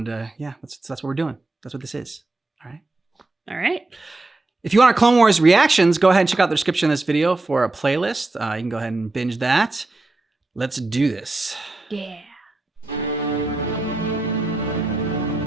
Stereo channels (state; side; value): quieter; left; 3.1 dB